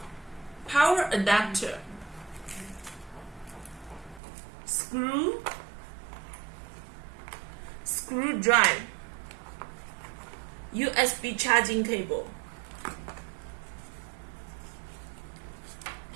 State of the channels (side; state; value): left; drops out; at 4.2 s